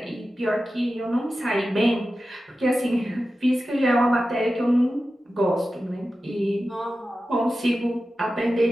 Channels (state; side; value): normal; both; correlation 0.93